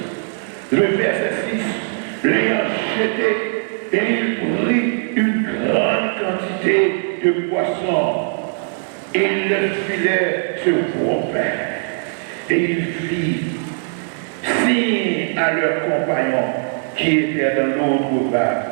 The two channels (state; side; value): silent; left; digital silence